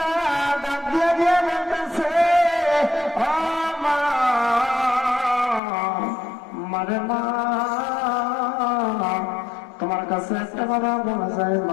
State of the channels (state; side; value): drops out; right; at 5.6 s